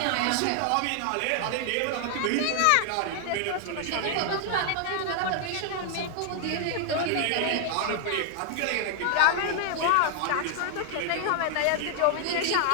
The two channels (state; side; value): different; both; correlation 0.00